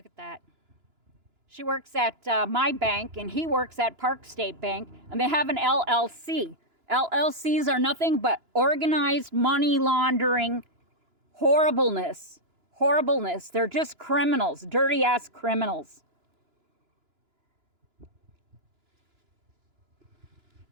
at that. She works at my bank and he works at Park State Bank. And they have an LLC. LLCs are nothing but organized money laundering horribleness. Horribleness. They're just criminals. Dirty ass criminals.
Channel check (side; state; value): left; late; 2.9 ms